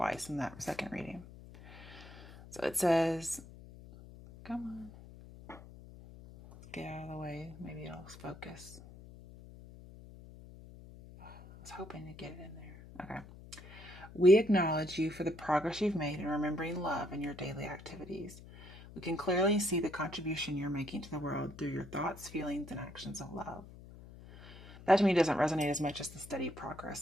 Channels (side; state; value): left; noise; hum, 17 dB below the sound